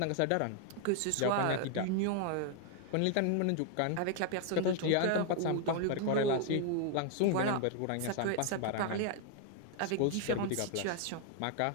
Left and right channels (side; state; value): both; different; correlation 0.00